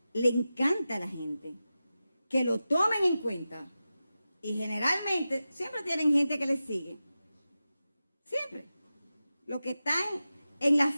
le encanta a la gente. Que lo tomen en cuenta. Y generalmente siempre tienen gente que les sigue. Siempre. Los que están en la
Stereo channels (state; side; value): inverted; both; correlation -0.93